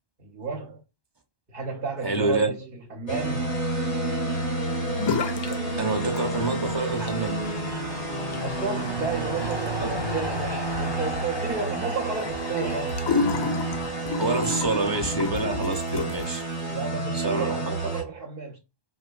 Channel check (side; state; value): right; late; 1.2 ms